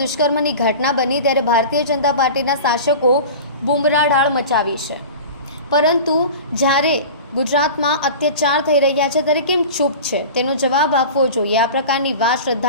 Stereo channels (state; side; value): inverted; both; correlation -0.35